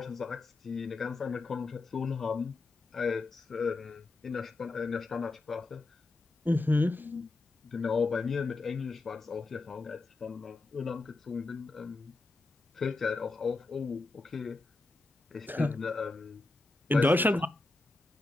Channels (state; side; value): quieter; right; 3.3 dB